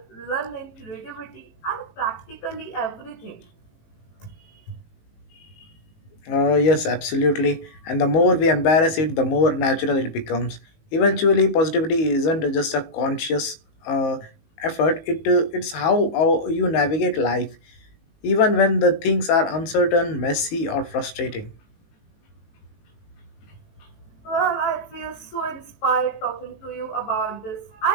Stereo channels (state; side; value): late; right; 19 ms